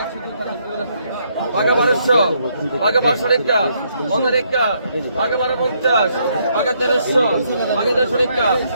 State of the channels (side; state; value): both; inverted; correlation -0.73